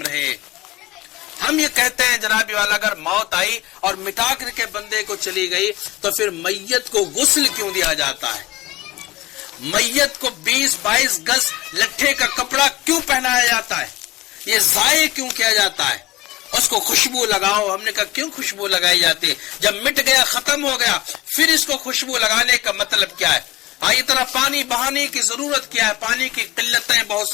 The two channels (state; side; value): quieter; right; 18.8 dB